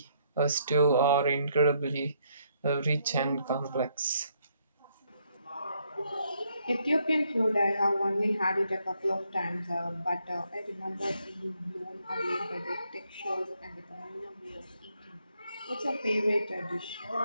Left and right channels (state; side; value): inverted; both; correlation -0.73